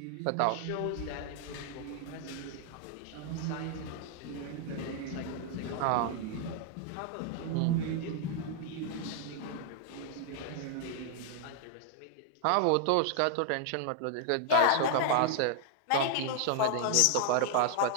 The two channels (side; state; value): both; different; correlation 0.00